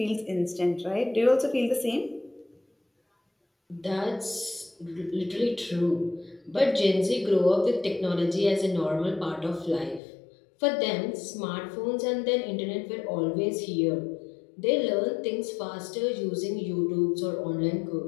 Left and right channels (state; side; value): drops out; right; at 10.0 s